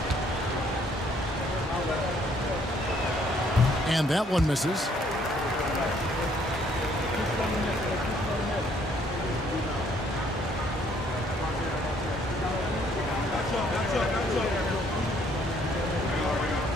And that one misses.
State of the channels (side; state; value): both; normal; correlation 0.65